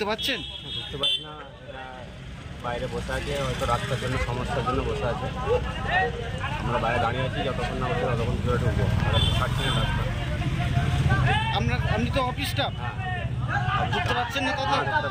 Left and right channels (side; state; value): both; identical; correlation 1.00